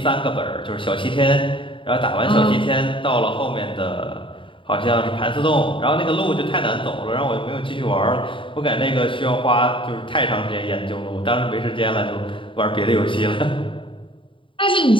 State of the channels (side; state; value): right; late; 0.25 ms